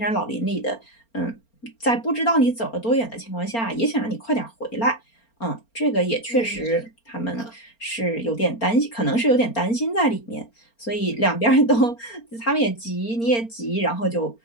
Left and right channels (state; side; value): late; right; 4.4 ms